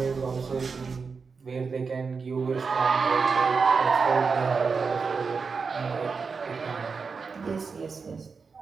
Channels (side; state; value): left; quieter; 5.1 dB